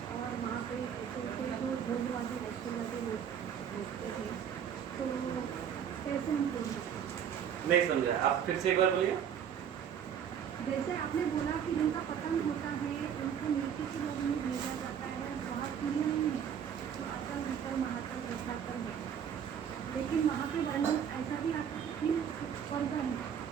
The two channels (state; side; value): quieter; left; 8.4 dB